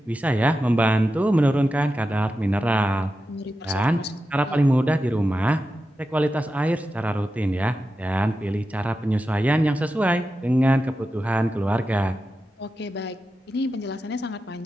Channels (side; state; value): both; normal; correlation 0.91